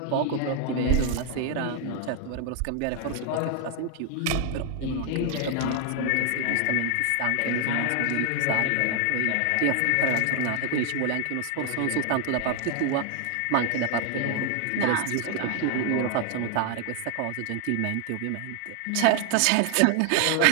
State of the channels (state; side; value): different; both; correlation 0.00